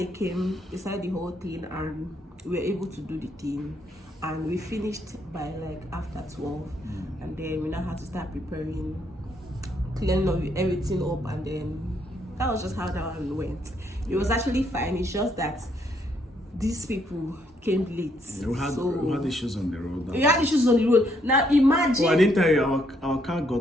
came, they started the whole thing, and we were able to do the thing, and we finished by like after 12, and then we now had to start preparing, cleaning everything up, and then that was just how that one went. It was actually fine. It's just that these people came late. We had issues on the road. We had issues on the road. Now imagine. Oh, I didn't tell you, our car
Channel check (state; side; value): normal; both; correlation 0.72